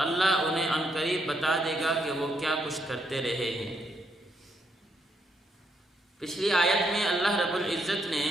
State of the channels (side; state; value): both; normal; correlation 0.76